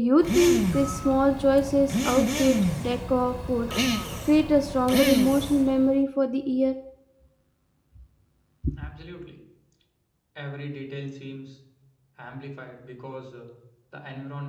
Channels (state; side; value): identical; both; correlation 1.00